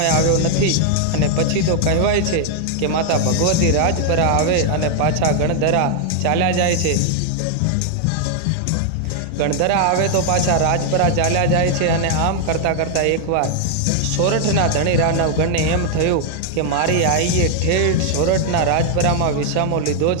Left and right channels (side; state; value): both; different; correlation 0.00